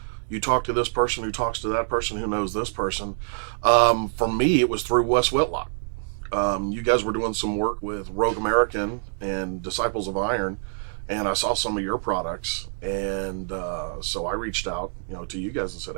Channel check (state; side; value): silent; left; digital silence